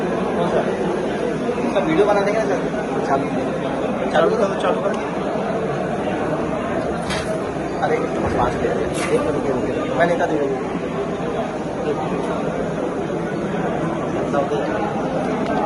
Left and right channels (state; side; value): identical; both; correlation 1.00